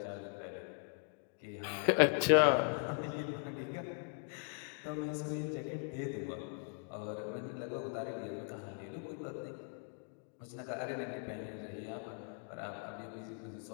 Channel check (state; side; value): silent; right; 52 dB below the other